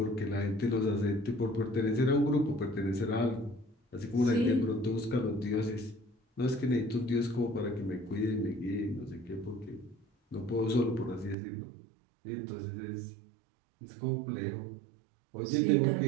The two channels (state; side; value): drops out; left; at 11.4 s